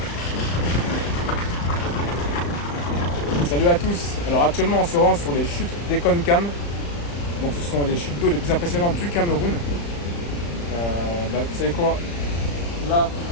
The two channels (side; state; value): right; late; 35 ms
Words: Salut à tous. Alors actuellement on se rend sur les chutes d'Ekonkam. Donc ce sont les chutes d'eau les plus impressionnantes du Cameroun. Vous savez quoi? Là,